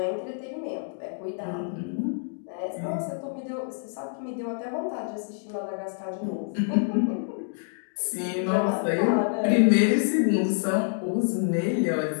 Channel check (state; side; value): silent; right; digital silence